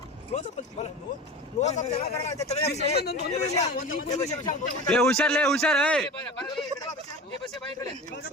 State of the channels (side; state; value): both; normal; correlation 0.32